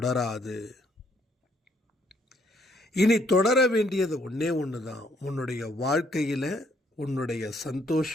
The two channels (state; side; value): normal; both; correlation 0.69